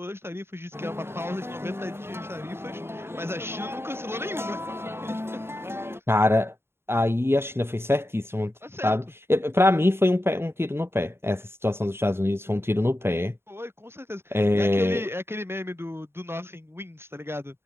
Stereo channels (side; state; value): left; late; 0.12 ms